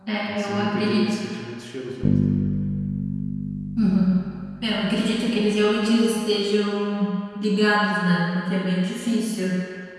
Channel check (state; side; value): identical; both; correlation 1.00